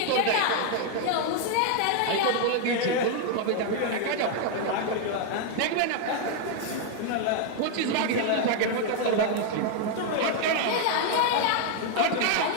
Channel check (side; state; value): both; different; correlation 0.00